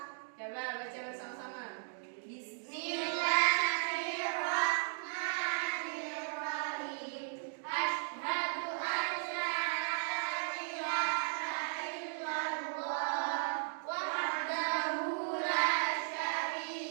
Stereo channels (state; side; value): silent; left; digital silence